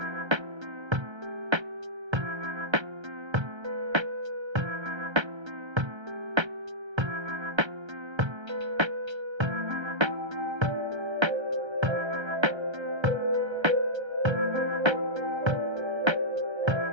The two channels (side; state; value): left; late; 1.3 ms